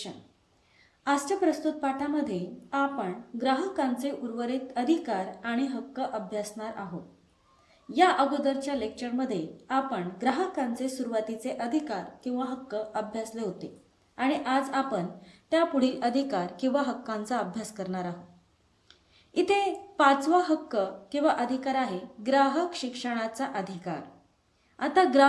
आजच्या प्रस्तुत पाठामध्ये आपण ग्राहकांचे उर्वरित अधिकार आणि हक्क अभ्यासणार आहोत. या अगोदरच्या लेक्चरमध्ये आपण ग्राहकांचे सुरुवातीचे अधिकार किंवा हक्क अभ्यासले होते आणि आज आपण त्यापुढील अधिकार किंवा हक्कांचा अभ्यास करणार आहोत. इथे 5वा हक्क किंवा अधिकार आहे ग्राहक शिक्षणाचा अधिकार. आता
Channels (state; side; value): identical; both; correlation 1.00